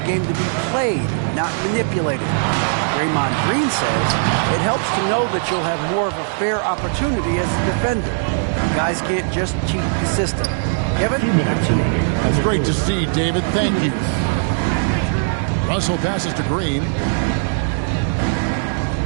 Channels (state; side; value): silent; left; digital silence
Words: to be played, not manipulated. Draymond Green says it helps to know that you'll have more of a fair opportunity as a defender. Guys can't just cheat the system. Kevin, back to you. That's great to see, David. Thank you. Russell passes to Green.